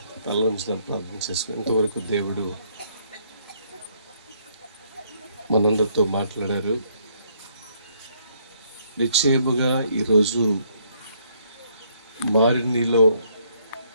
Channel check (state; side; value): inverted; both; correlation -0.69